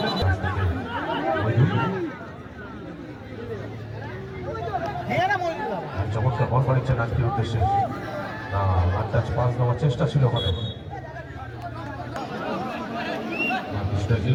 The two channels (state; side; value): identical; both; correlation 1.00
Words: চমৎকার বল বাড়িচ্ছে নাজকের উদ্দেশ্যে। না আন্দাজ পাস দেওয়ার চেষ্টা ছিল ওখানে কিছুটা